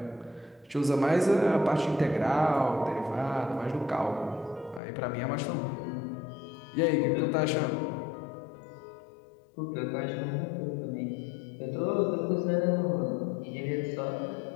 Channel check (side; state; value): right; drops out; at 4.8 s